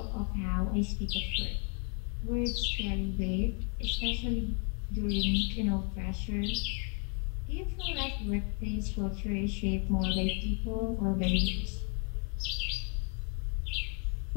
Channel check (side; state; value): right; quieter; 37.5 dB